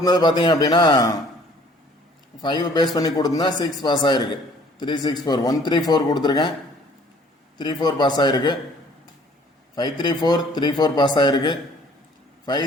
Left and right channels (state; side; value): normal; both; correlation 0.56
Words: பார்த்தீங்க அப்படின்னா 5 பேஸ் பண்ணி கொடுத்துருந்தேன். 6 பாஸ் ஆகிருக்கு. 364 134 கொடுத்துருக்கேன், 34 பாஸ் ஆகிருக்கு. 534 34 பாஸ் ஆகிருக்கு.